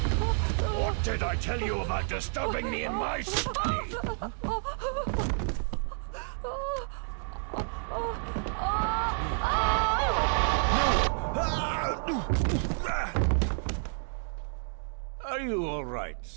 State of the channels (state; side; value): silent; left; digital silence